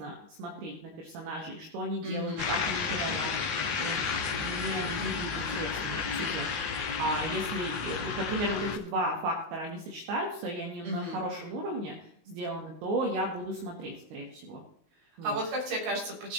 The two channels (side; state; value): left; late; 19 ms